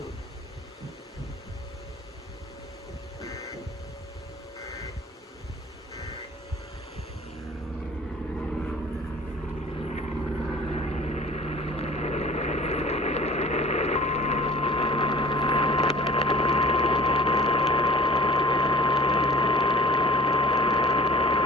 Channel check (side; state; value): both; normal; correlation 0.46